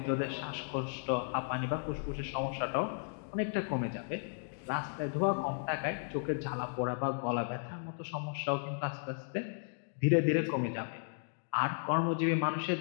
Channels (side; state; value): right; silent; digital silence